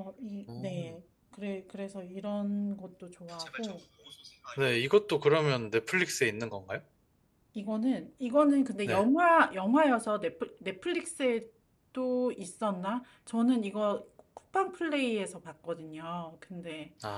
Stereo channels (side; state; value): both; identical; correlation 1.00